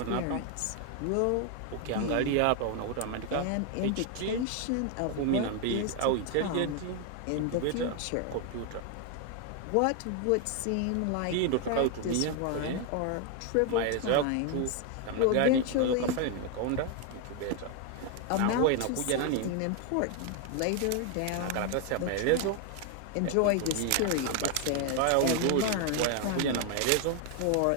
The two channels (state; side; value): different; both; correlation 0.01